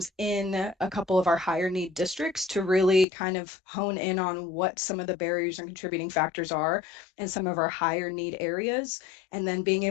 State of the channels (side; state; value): right; drops out; at 3.1 s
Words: in a couple of our higher need districts to really kind of hone in on what some of the barriers and contributing factors are in some of our higher need areas, and then being